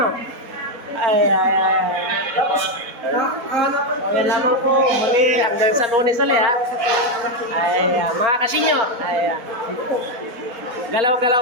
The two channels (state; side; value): late; left; 4.3 ms